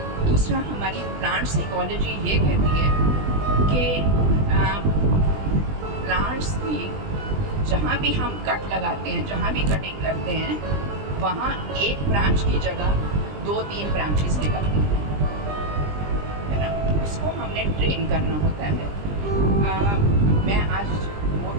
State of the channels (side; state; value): left; late; 20 ms